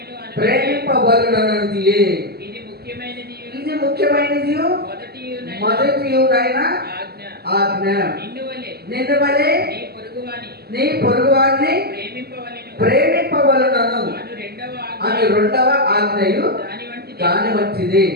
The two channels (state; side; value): late; left; 0.46 ms